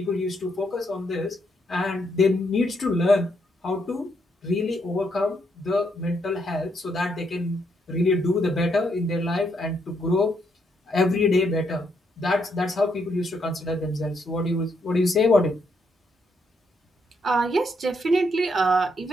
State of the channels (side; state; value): both; normal; correlation 0.76